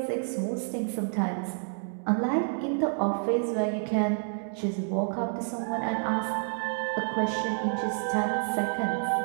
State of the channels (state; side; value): silent; left; 59 dB below the other